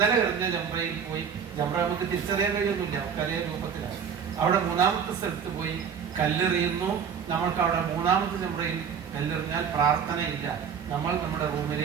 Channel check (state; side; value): quieter; left; 7.1 dB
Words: എറിഞ്ഞ ജംറയിൽ പോയി, ജംറ നമുക്ക് തിരിച്ചറിയാൻ കഴിയൊന്നുമില്ല, കലയ രൂപത്തിലാണ്. അവിടെ മൂന്നാമത്തെ സ്ഥലത്ത് പോയി കല്ലെറിയുന്നു. നമ്മൾക്ക് അവിടെ മൂന്നാമത്തെ ജംറയിൽ കല്ലെറിഞ്ഞാൽ പ്രാർത്ഥനയില്ല, നമ്മൾ നമ്മുടെ